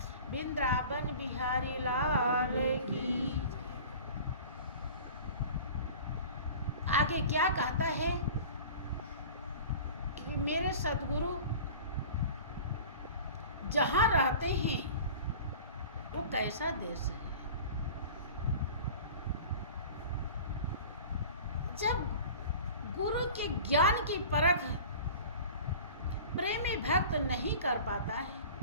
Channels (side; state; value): both; inverted; correlation -0.40